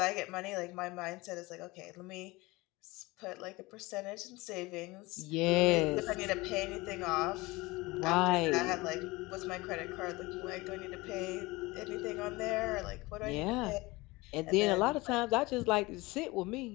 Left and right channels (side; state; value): right; quieter; 22.2 dB